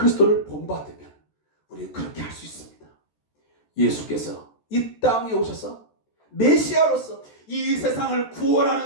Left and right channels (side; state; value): right; late; 13 ms